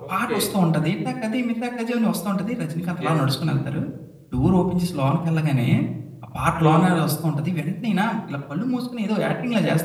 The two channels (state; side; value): identical; both; correlation 1.00